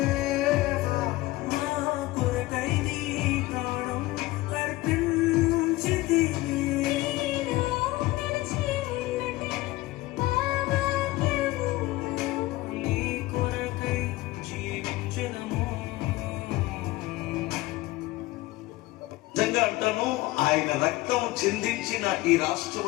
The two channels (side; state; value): right; quieter; 18.9 dB